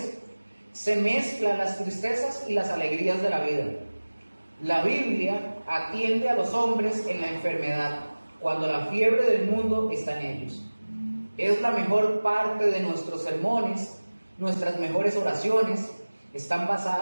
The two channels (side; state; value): both; inverted; correlation -1.00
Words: se mezclan las tristezas y las alegrías de la vida. La Biblia atiende a los hombres en la enfermedad, cuando la fiebre del mundo está en ellos. Es la mejor parte de nuestros sermones, nuestras mejores oraciones están